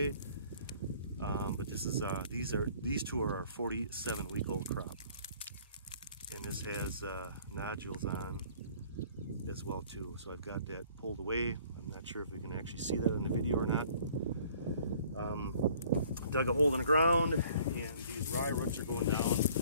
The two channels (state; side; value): inverted; both; correlation -0.55